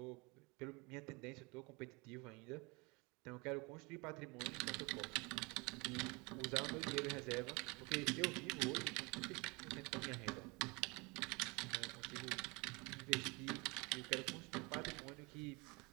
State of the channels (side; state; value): left; quieter; 27.6 dB